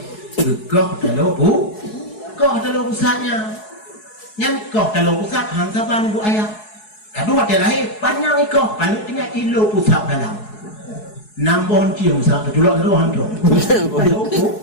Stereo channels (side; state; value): right; late; 4.7 ms